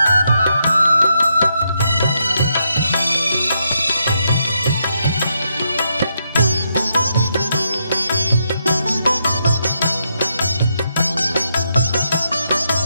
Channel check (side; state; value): both; inverted; correlation -0.80